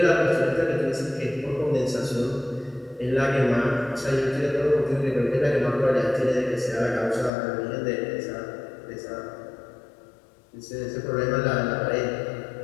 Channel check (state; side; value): drops out; right; at 7.3 s